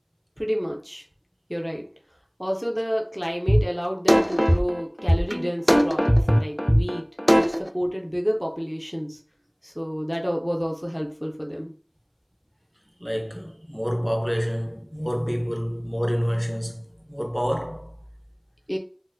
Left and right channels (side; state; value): both; identical; correlation 1.00